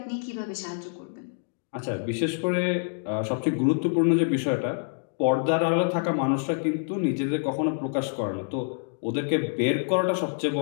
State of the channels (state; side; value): silent; right; digital silence